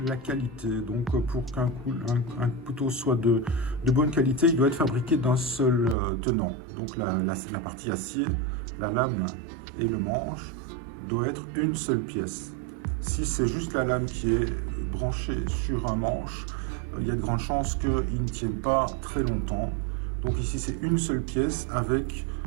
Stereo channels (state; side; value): drops out; left; at 6.0 s